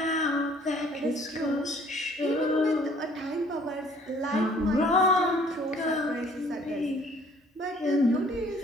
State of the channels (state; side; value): normal; both; correlation 0.57